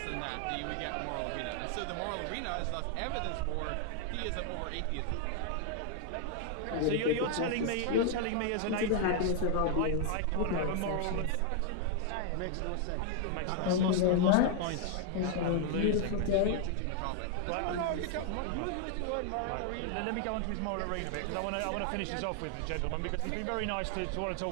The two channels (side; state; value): both; different; correlation 0.00